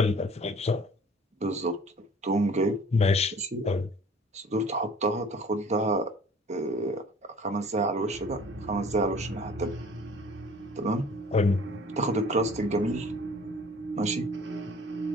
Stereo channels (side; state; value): both; normal; correlation 0.50